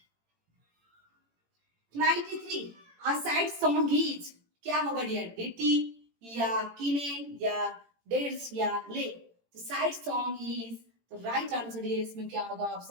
93 a sad song is क्या होगा डियर, डिटी या किनेन या डेट्स या ले. तो सैड सॉन्ग इज, तो राइट आंसर डियर इसमें क्या होगा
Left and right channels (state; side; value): late; left; 18 ms